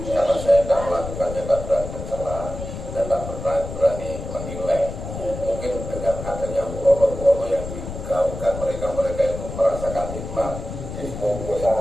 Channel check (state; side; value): noise; left; rumble, 8 dB below the sound